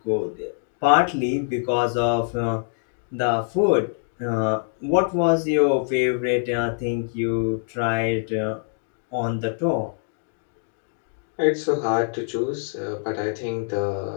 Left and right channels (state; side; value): silent; right; digital silence